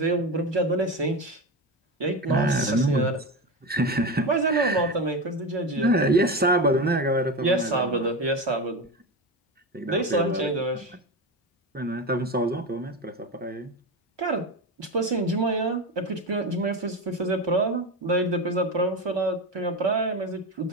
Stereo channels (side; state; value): both; normal; correlation 0.20